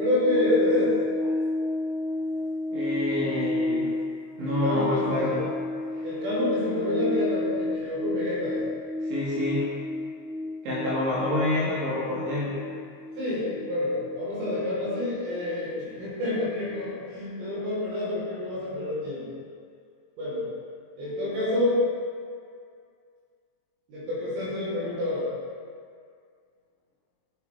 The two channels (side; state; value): left; late; 22 ms